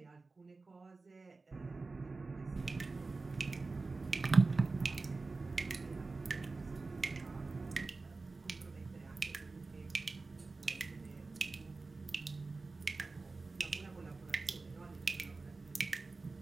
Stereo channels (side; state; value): left; quieter; 3.7 dB